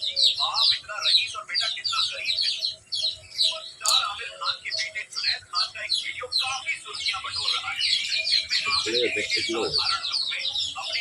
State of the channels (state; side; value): identical; both; correlation 1.00